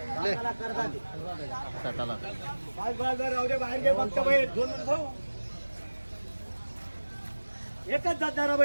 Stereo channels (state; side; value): inverted; both; correlation -1.00